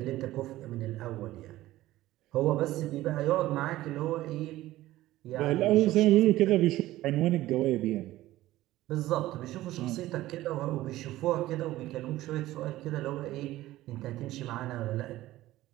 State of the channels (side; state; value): left; quieter; 16.0 dB